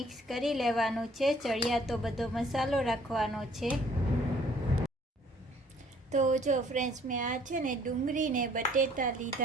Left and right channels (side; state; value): both; normal; correlation 0.59